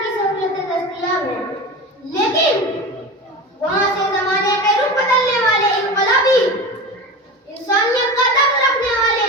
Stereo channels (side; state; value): both; normal; correlation 0.28